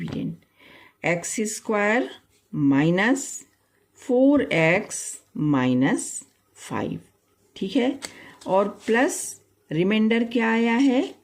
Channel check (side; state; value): both; identical; correlation 1.00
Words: x square minus 4x minus 5। ठीक है, और प्लस रिमाइंडर क्या आया है,